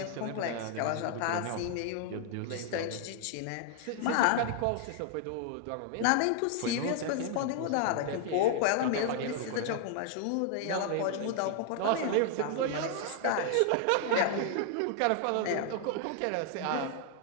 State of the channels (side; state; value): both; different; correlation 0.00